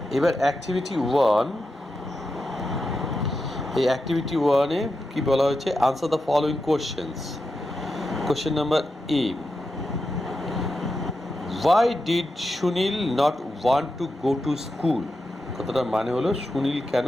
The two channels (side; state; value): both; normal; correlation 0.88